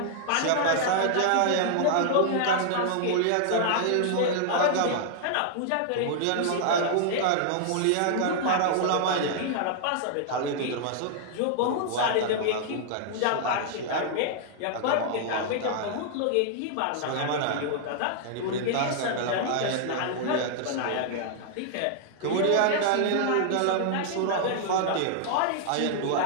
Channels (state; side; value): different; both; correlation -0.01